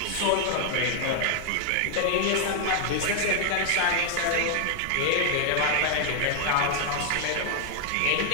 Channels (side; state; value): both; different; correlation 0.00